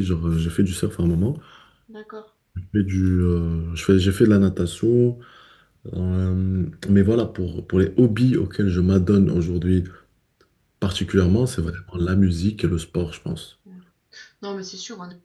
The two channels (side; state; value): both; identical; correlation 1.00